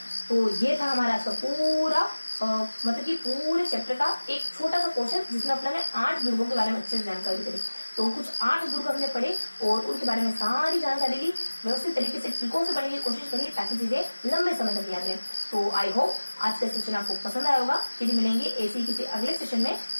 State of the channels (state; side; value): inverted; both; correlation -1.00